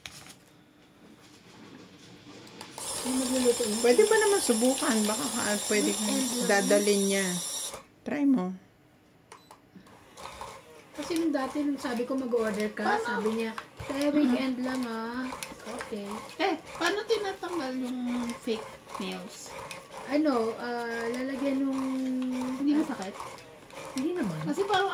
Hindi magluluto yun. pwede ba naman subukan? Baka pwede kong dadalin niya. Try mo. Kasi nung dati, nung sabi ko mag-order ka, sabi niya, kaya weekend lang ah. Okay. Paano tinatanggal yung fake nails? Ano, lalagyan nung... Hindi masakit? Hindi naman. Kasi parang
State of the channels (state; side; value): identical; both; correlation 1.00